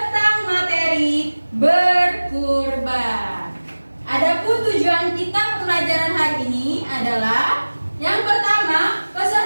materi berkurban. Adapun tujuan kita pembelajaran hari ini adalah yang pertama,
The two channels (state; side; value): inverted; both; correlation -1.00